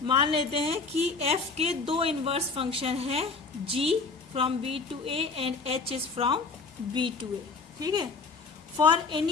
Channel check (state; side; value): quieter; right; 4.3 dB